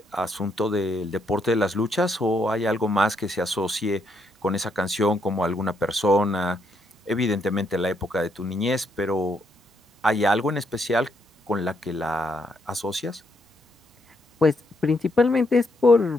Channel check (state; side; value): normal; both; correlation 0.75